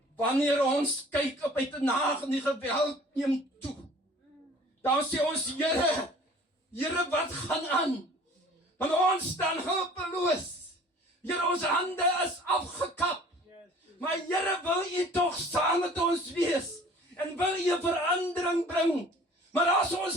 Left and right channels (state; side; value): normal; both; correlation 0.49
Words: wanneer ons kyk op uit 'n nag en die geweld neem toe, dan sê ons, Here, wat gaan aan? Want ons staan hulpeloos. Here, ons hande is afgekap. Maar Here, wil u tog saam met ons wees? En wil u 'n verandering bring? Maar as ons